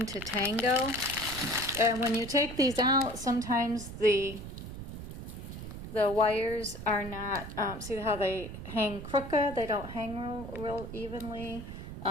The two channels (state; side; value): noise; right; rumble, 10 dB below the sound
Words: to Tango, and when you take these out, sometimes the wires are not, see how they hang crooked? They don't hang real evenly,